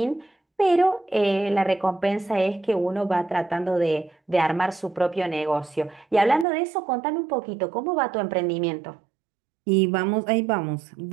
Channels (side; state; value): left; drops out; at 6.5 s